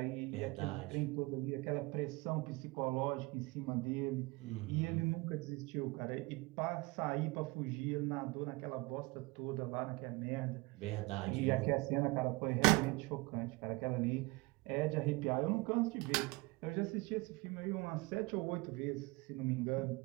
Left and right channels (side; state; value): left; quieter; 24.1 dB